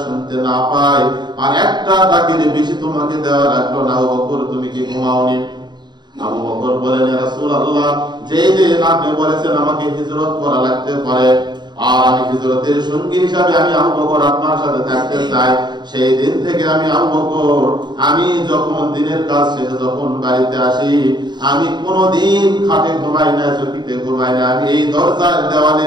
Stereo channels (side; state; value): left; late; 0.21 ms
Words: শুনতে না পায়, আর একটা ডাকের বেশি তোমাকে দেওয়া লাগলো না। আবু বকর তুমি কি ঘুমাওনি? আবু বকর বলেন, ইয়া রাসূলুল্লাহ যেই দিন আপনি বলেছেন আমাকে হিজরত করা লাগতে পারে, আর আমি হিজরতের সঙ্গী হিসাবে আমি আবু বকর আপনার সাথে থাকতে চাই, সেই দিন থেকে আমি আবু বকর, আমি যখন দিনের কাজ শেষে যখন বাড়িতে আসি, আমি কোনোদিন খাটে ঘুমাই না, চকিতে ঘুমাই না, আমি এই দরজার দেওয়ালে